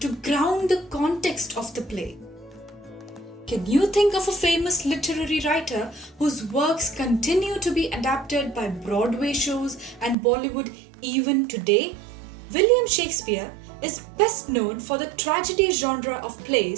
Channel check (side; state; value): left; drops out; at 10.2 s